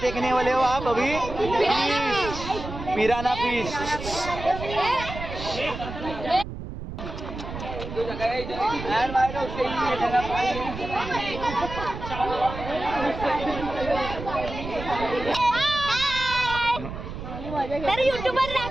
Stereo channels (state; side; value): noise; right; rumble, 9 dB below the sound